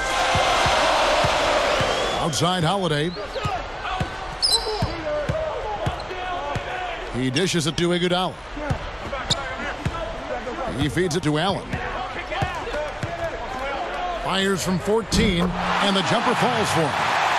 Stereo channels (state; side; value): identical; both; correlation 1.00